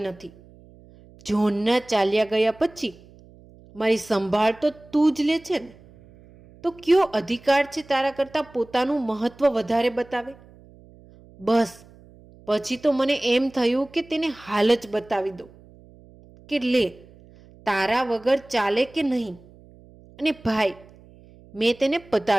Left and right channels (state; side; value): noise; right; hum, 24 dB below the sound